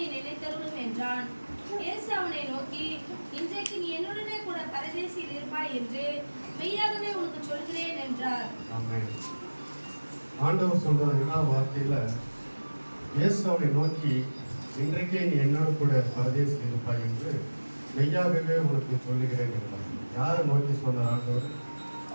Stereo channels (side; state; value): both; inverted; correlation -1.00